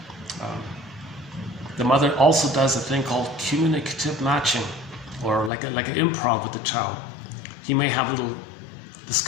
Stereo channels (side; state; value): right; drops out; at 5.5 s